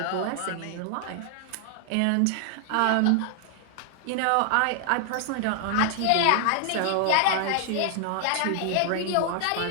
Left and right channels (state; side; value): different; both; correlation 0.00